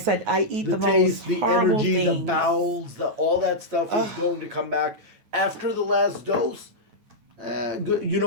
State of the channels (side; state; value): left; late; 9.2 ms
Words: I eat the taste, most horrible the energy, things. the bowels, all that stuff is going to come back after the last dose. Good. You